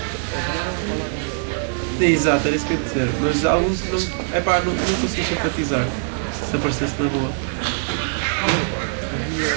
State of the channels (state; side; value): silent; left; digital silence